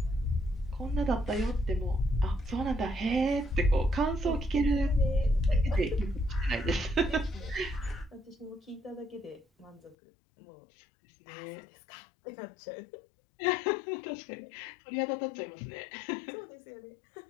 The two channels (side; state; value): right; drops out; at 10.0 s